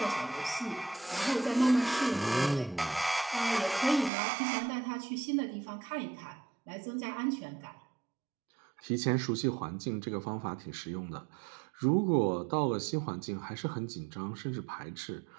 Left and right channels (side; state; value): left; drops out; at 4.1 s